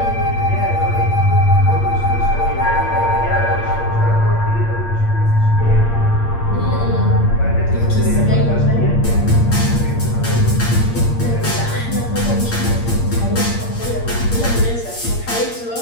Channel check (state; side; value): late; right; 8.6 ms